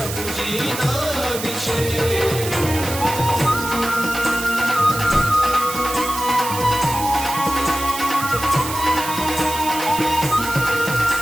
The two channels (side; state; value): right; noise; hiss, 7 dB below the sound